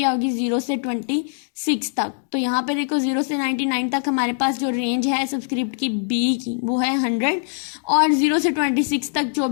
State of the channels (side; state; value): right; silent; digital silence